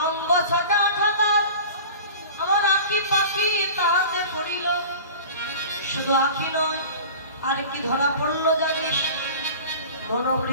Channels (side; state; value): both; inverted; correlation -0.38